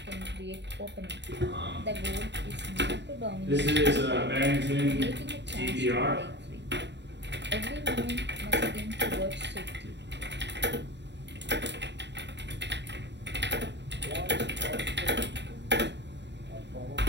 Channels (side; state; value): left; late; 0.51 ms